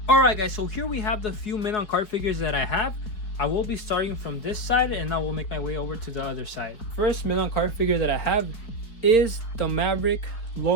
Alright guys, so here we have the few men on card figures that I have. I will be starting from this side and I will make my way over to the other side. First men on card figure that I have is the Maverick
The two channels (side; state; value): right; late; 4.7 ms